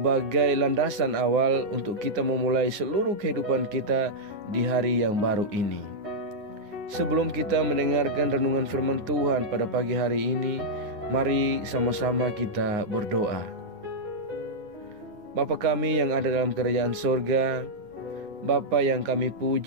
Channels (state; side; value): late; left; 9.7 ms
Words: landasan awal untuk kita memulai seluruh kehidupan kita di hari yang baru ini. Sebelum kita mendengarkan renungan firman Tuhan pada pagi hari ini, mari sama-sama kita berdoa. Bapa kami yang ada dalam kerajaan sorga, Bapa yang kami